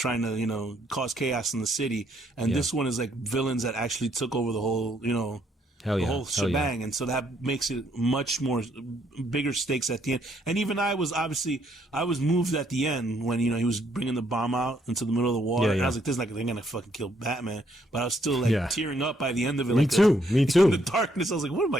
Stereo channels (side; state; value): both; normal; correlation 0.70